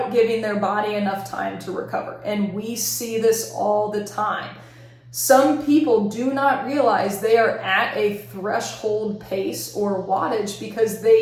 giving their body enough time to recover. And we see this all the time. Some people do not realize they are at a threshold pace or wattage because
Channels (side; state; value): both; identical; correlation 1.00